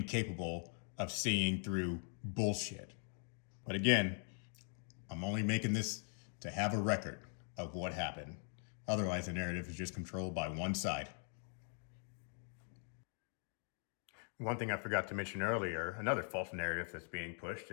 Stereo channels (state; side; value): silent; right; 50 dB below the other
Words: of seeing through bullshit. But again, I'm only making this to have a record of what happened. Otherwise, the narrative is just controlled by one side. One thing I forgot to mention earlier, another false narrative that's being pushed